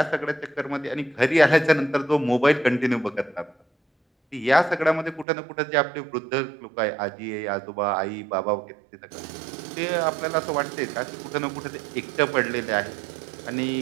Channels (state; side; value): drops out; left; at 5.2 s